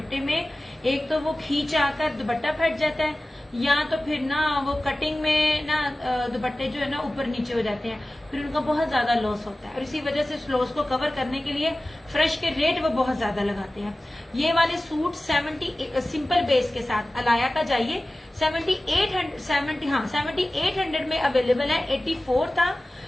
में एक तो वो खींच आकर दुपट्टा फट जाता है, या तो फिर ना वो कटिंग में ना दुपट्टे जो है ना ऊपर नीचे हो जाते हैं, फिर उनका बहुत ज्यादा लॉस होता है, और इसी वजह से उस लॉस को कवर करने के लिए फ्रेश के रेट वो बहुत ज्यादा लगाते हैं। ये वाले सूट 70 सिंपल बेस के साथ अलाया का जाइए 7800 में अवेलेबल है। 84 था,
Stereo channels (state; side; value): normal; both; correlation 0.96